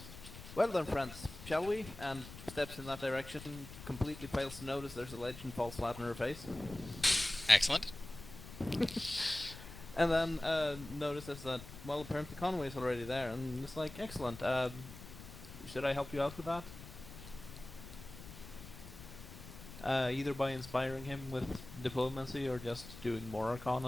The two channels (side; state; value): left; noise; rumble, 14 dB below the sound